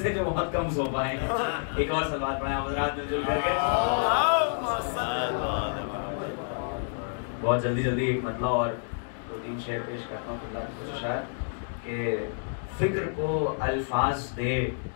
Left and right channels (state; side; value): silent; right; digital silence